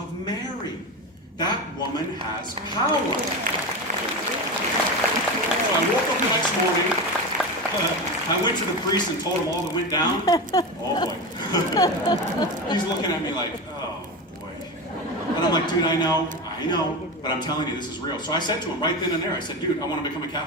Mary. That woman has power. So I woke up the next morning. I went to the priest and told him all that went down. Oh, boy. He's looking at me like, oh, boy. And I'm like, dude, I know, but I'm telling you, this is real. So I said to him right then and there, I said, dude, I want to become a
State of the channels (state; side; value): normal; both; correlation 0.21